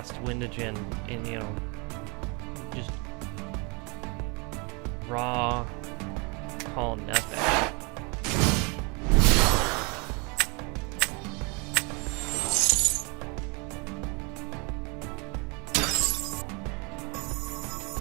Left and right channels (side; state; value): left; quieter; 31.2 dB